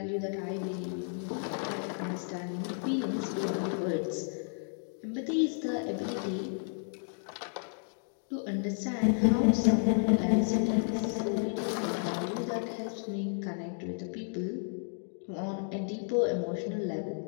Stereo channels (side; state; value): right; silent; 56 dB below the other